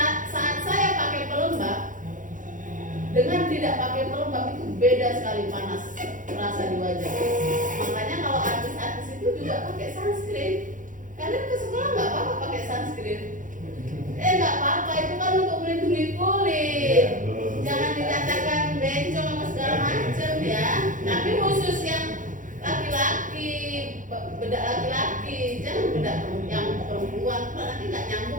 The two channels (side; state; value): left; late; 0.38 ms